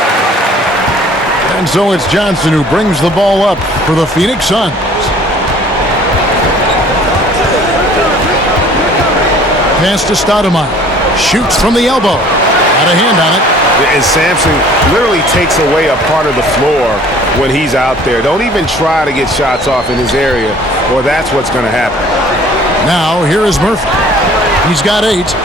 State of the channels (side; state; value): both; normal; correlation 0.52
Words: And so it's Johnson who brings the ball up for the Phoenix Suns. Pass to Stoudemire. Shoots from the elbow. Got a hand on it. And Sampson literally takes away a part of the floor when he's out there. Don't even try to get shots off in his area, or that's what's going to happen. Now, here is Murphy. He's got 8.